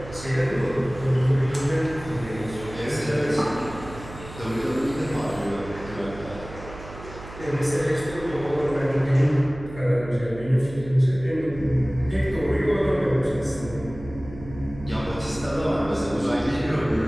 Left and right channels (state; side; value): noise; right; hum, 14 dB below the sound